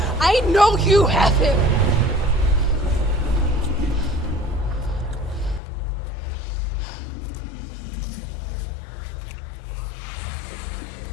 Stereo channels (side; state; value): right; drops out; at 5.6 s